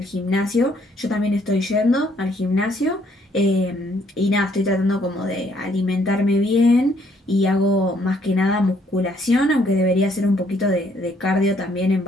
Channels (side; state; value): both; normal; correlation 0.67